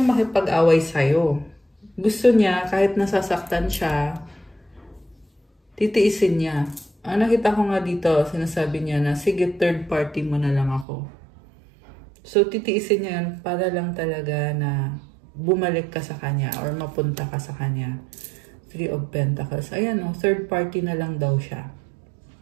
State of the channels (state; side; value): drops out; left; at 10.9 s